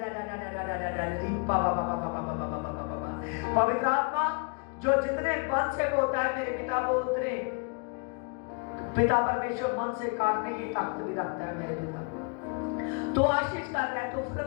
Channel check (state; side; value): quieter; right; 35.5 dB